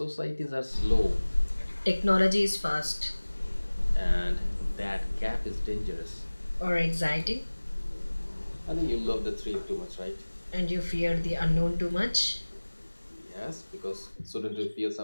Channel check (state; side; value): inverted; both; correlation -1.00